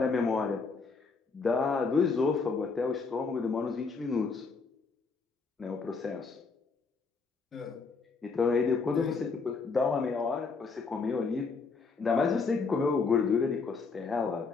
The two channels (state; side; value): quieter; right; 4.6 dB